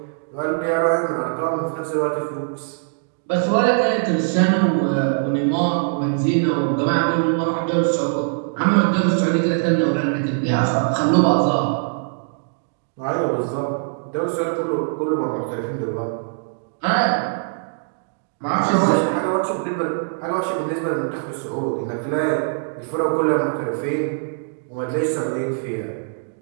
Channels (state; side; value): silent; left; digital silence